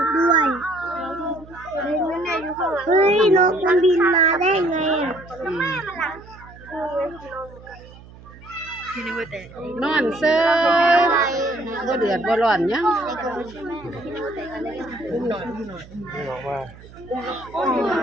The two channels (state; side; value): noise; right; hum, 20 dB below the sound